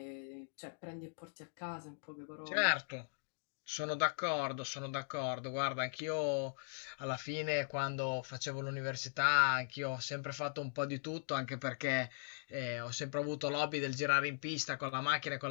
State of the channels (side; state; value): right; silent; digital silence